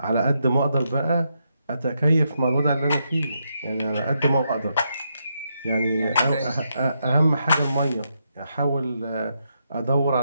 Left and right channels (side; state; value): both; inverted; correlation -0.81